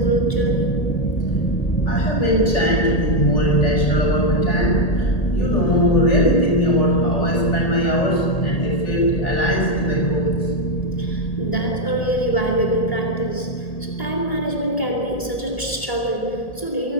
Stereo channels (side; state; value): right; late; 1.8 ms